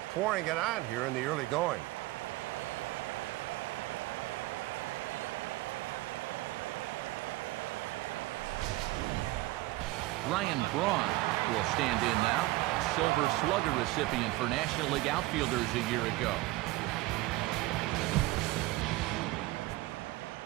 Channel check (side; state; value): left; quieter; 19.5 dB